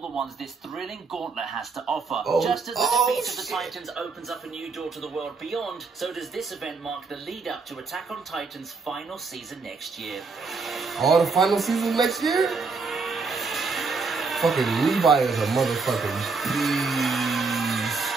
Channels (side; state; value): left; quieter; 4.5 dB